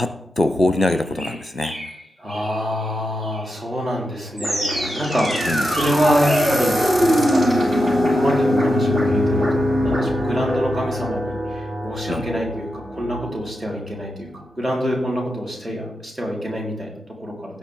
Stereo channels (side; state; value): both; normal; correlation 0.88